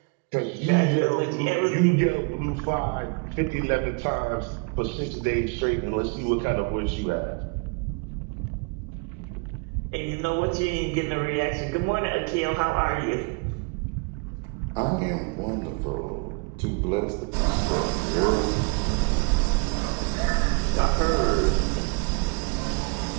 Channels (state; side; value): quieter; left; 32.6 dB